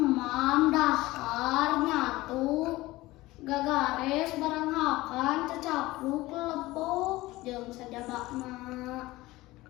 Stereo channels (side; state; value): right; quieter; 18.9 dB